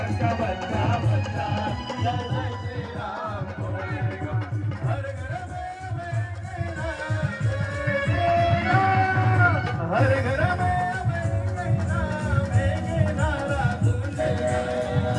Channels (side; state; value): both; identical; correlation 1.00